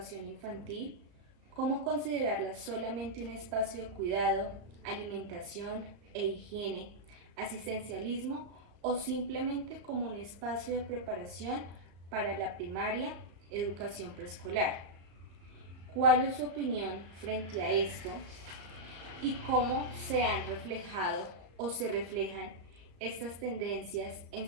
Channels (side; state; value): left; late; 35 ms